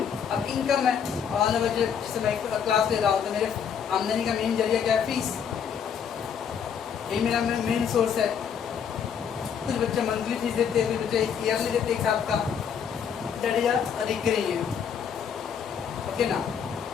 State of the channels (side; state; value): right; quieter; 7.6 dB